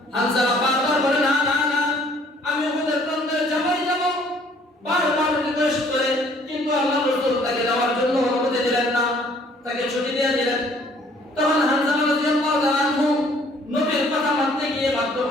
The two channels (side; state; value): both; normal; correlation 0.59